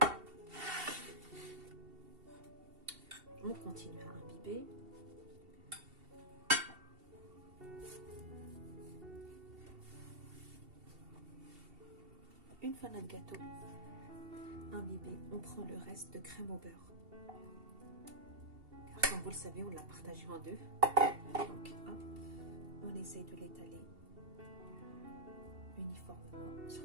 On continue à imbiber. Une fois notre gâteau imbibé, on prend le reste de crème au beurre. Car comme vous le savez, on l'a partagé en deux. Donc, hop, on essaye de l'étaler uniformément sur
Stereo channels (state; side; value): late; left; 2.7 ms